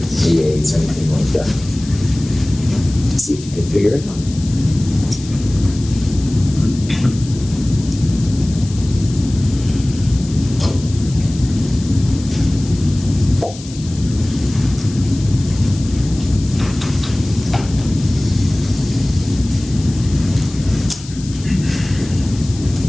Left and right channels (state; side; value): noise; left; hiss, 17 dB below the sound